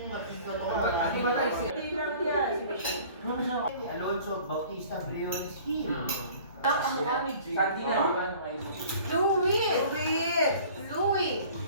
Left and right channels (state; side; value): inverted; both; correlation -0.48